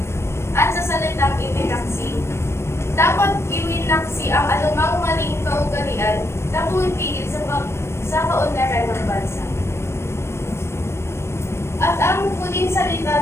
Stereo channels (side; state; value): right; late; 0.13 ms